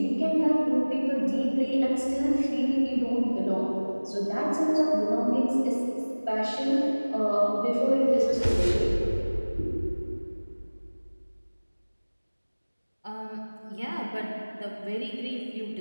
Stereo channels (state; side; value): inverted; both; correlation -1.00